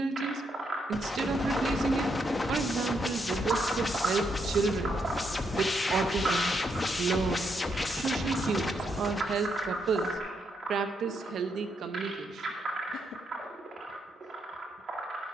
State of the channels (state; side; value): normal; both; correlation 0.78